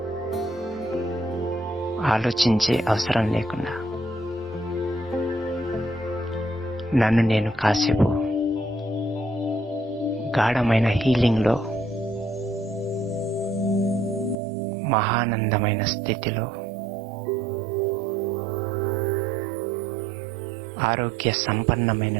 ఆలోచించే అవసరం లేకుండా నన్ను నేను కాసేపు గాఢమైన హీలింగ్లో, మహానందమైన స్థితిలో, ఆరోగ్య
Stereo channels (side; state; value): left; drops out; at 14.4 s